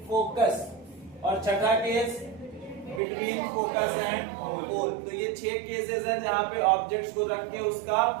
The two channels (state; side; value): drops out; left; at 3.0 s